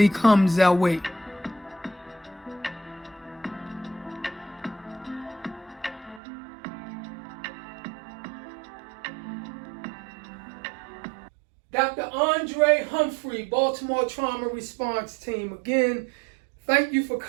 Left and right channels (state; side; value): drops out; left; at 6.2 s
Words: comes our way. Dr. Andre Humphrey, Baltimore Trauma Response Team. Again, thank you for